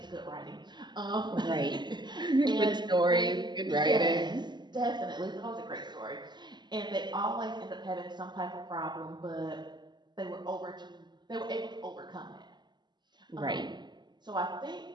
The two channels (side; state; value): left; late; 0.21 ms